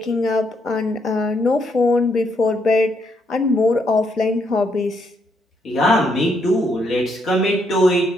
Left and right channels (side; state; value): both; normal; correlation 0.75